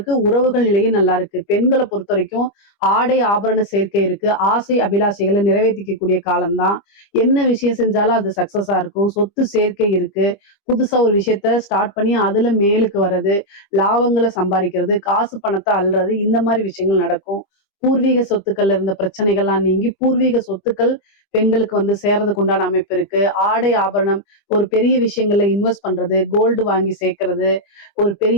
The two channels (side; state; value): right; late; 25 ms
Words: உறவுகள் நிலையும் நல்லா இருக்கு. பெண்களை பொறுத்த வரைக்கும் ஆடை ஆபரண சேர்க்கை இருக்கு. ஆசை அபிலாஷைகளை நிறைவேற்றிக்கக்கூடிய காலம்தான். என்ன விஷயம் செஞ்சாலும் அது சக்சஸா இருக்கும். சொத்து சேர்க்கை இருக்கு. புதுசா ஒரு விஷயத்த ஸ்டார்ட் பண்ணி அதுல மேலுக்கு வர்றது, லாபங்களை சம்பாதிக்கிறது, காசு பணத்தை அள்ளுறது, இந்த மாதிரி விஷயங்கள் நடக்கும். பூர்வீக சொத்துக்கள்ல இருந்த பிரச்சனைகள்லாம் நீங்கி பூர்வீக சொத்துக்கள் பெண்களுக்கு வந்து சேர்றதுக்கு உண்டான அமைப்பு இருக்கு. ஆடை ஆபரணம், ஒரு பெரிய விஷயங்கள்ல இன்வெஸ்ட் பண்றது, கோல்டு வாங்கி சேர்க்கறது, ஒரு